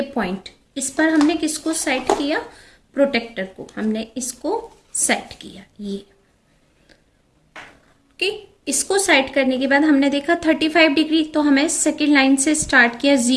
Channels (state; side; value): identical; both; correlation 1.00